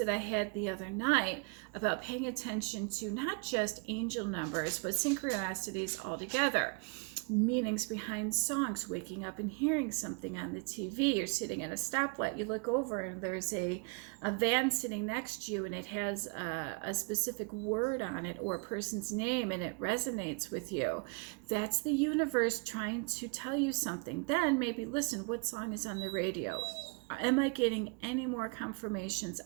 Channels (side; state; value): left; quieter; 31.9 dB